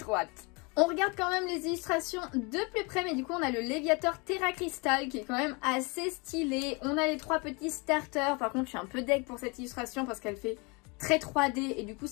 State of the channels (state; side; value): quieter; right; 29.6 dB